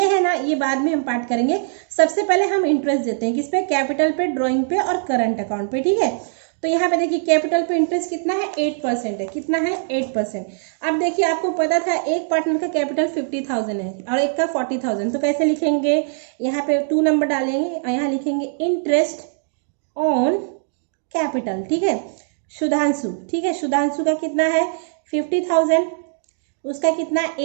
है ना, ये बाद में हम पार्ट करेंगे। सबसे पहले हम इंटरेस्ट देते हैं किस पे, कैपिटल पे, ड्राइंग पे और करंट अकाउंट पे। ठीक है, तो यहाँ पे देखिए कैपिटल पे इंटरेस्ट कितना है, 8% है। कितना है, 8%। अब देखिए आपको पता था एक पार्टनर का कैपिटल 50,000 है और एक का 40,000, तो कैसे लिखेंगे, यहाँ पे 2 नंबर डालेंगे और यहाँ लिखेंगे इंटरेस्ट ऑन कैपिटल। ठीक है, सुधांशु, ठीक है, सुधांशु का कितना है 50,000, उसका कितना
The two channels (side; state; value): left; silent; digital silence